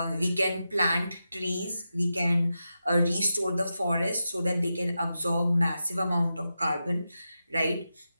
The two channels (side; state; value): both; inverted; correlation -0.90